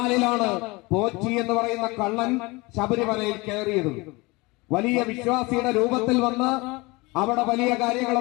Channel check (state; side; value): quieter; right; 24.3 dB